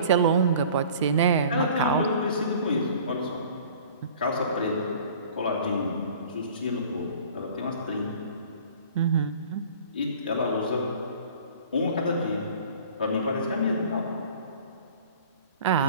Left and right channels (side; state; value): both; inverted; correlation -0.47